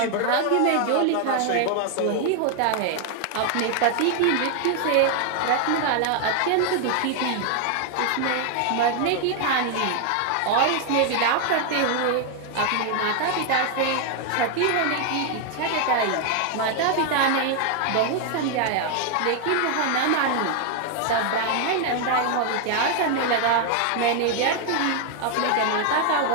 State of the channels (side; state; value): both; different; correlation 0.00